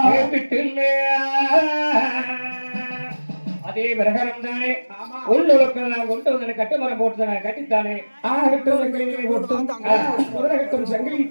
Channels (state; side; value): inverted; both; correlation -1.00